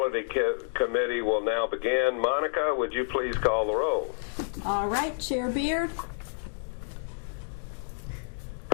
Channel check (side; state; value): right; silent; digital silence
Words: Committee will now begin. Monica, would you please call the roll? All right, Chair Beard.